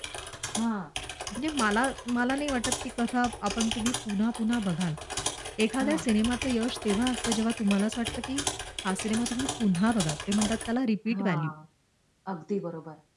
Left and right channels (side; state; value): both; identical; correlation 1.00